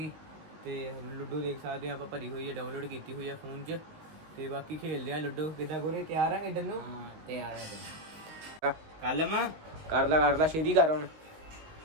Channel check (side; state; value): left; late; 19 ms